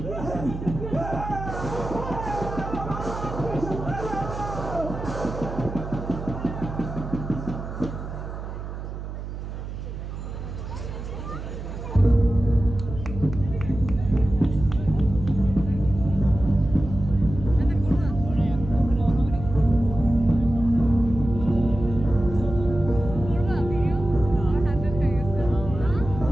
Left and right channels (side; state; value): right; noise; hum, 8 dB below the sound